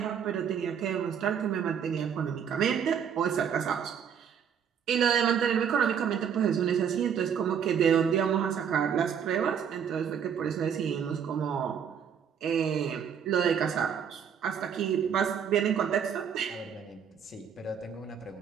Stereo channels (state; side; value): quieter; left; 7.8 dB